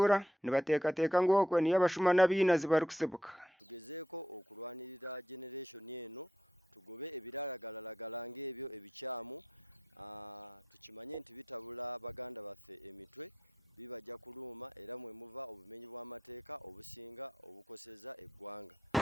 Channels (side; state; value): both; normal; correlation 0.82